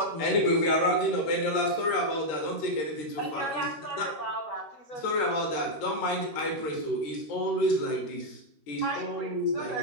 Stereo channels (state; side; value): late; right; 13 ms